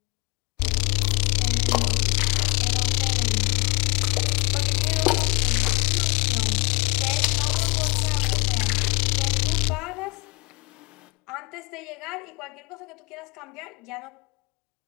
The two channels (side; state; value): right; quieter; 27.2 dB